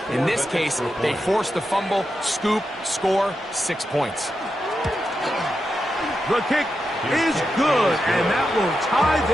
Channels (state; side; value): normal; both; correlation 0.88